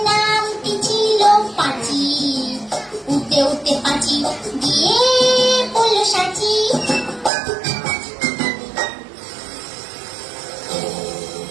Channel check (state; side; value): drops out; left; at 7.3 s